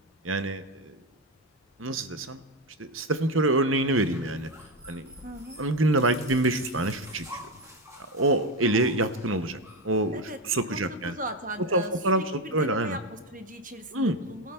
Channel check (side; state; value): both; normal; correlation 0.13